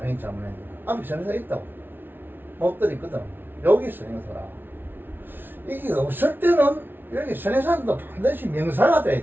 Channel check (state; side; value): late; left; 0.10 ms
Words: 잘못했네. 앞에 선행사 있다고. 못 들었거든. 여기 선행사라. 이게 없을 때는 여기 선행사도 반드시 명사가 돼야